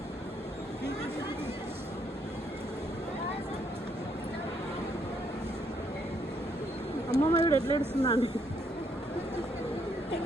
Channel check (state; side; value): normal; both; correlation 0.72